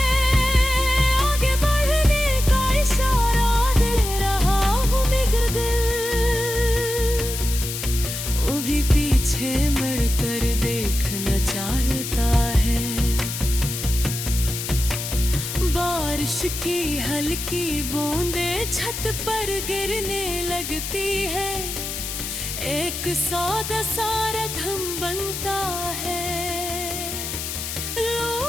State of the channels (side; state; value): left; noise; hiss, 6 dB below the sound